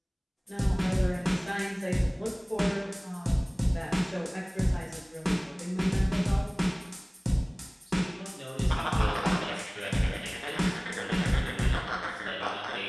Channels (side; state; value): both; identical; correlation 1.00